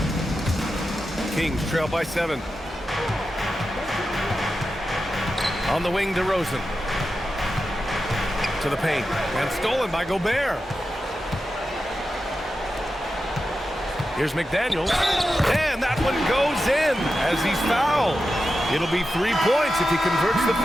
Kings trail by 7. On the wing, DeRozan. To the paint. And stolen by Gobert. Here's McDaniels. And that one goes in as he's fouled. It'll be 3 points if he converts the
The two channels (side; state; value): both; normal; correlation 0.91